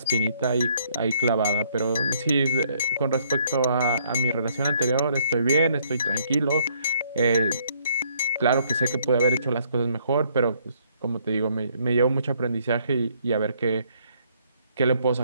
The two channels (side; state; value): both; inverted; correlation -0.66